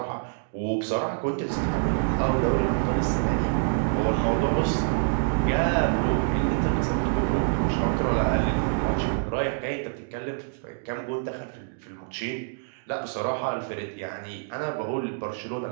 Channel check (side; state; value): left; silent; digital silence